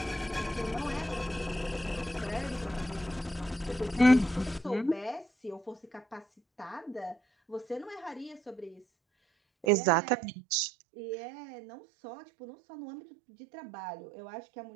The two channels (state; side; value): drops out; left; at 9.7 s